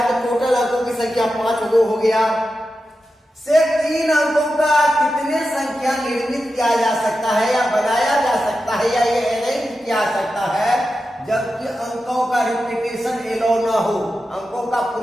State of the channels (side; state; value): both; normal; correlation 0.91